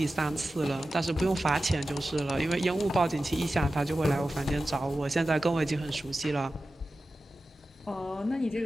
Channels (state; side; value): normal; both; correlation 0.94